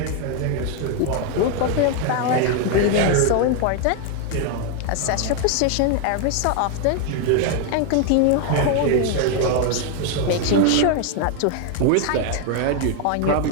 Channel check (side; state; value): both; different; correlation 0.01